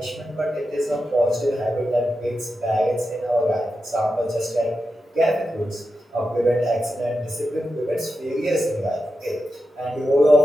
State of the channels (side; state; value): both; normal; correlation 0.89